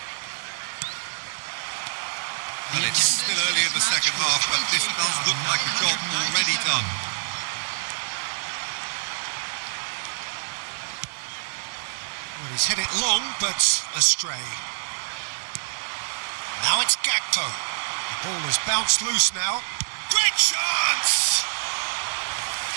And it's still early in the second half, but this does look like a job already done. Well, he's hit it long, but astray. Now it's Gakpo. The ball has bounced loose now. Great chance!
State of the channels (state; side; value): silent; left; 61 dB below the other